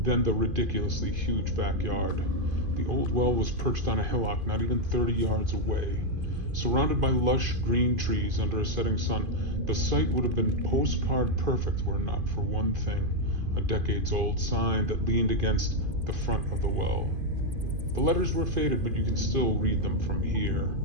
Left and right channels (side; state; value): left; late; 2.5 ms